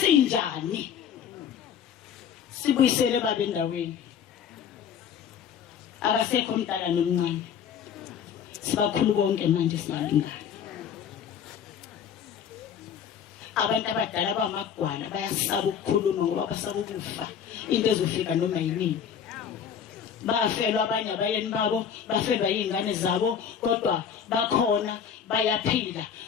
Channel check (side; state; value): right; quieter; 8.0 dB